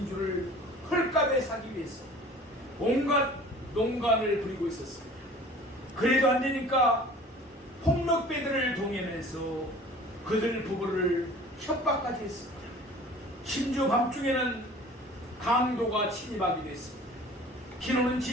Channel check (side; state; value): both; normal; correlation 0.45